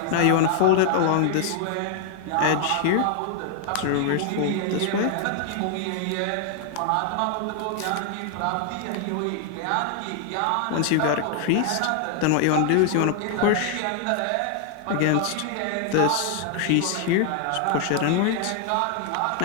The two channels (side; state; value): both; different; correlation 0.00